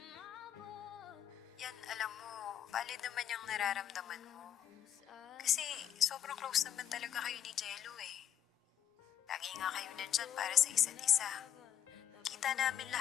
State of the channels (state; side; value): quieter; right; 9.9 dB